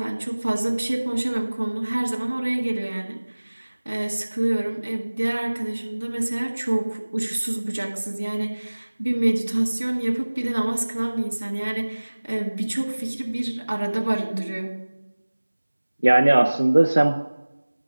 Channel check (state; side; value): inverted; both; correlation -1.00